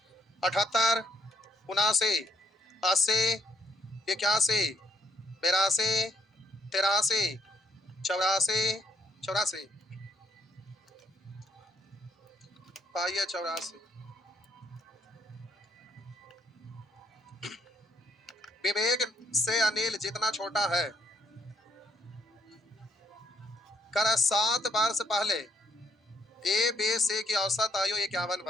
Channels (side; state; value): both; normal; correlation 0.70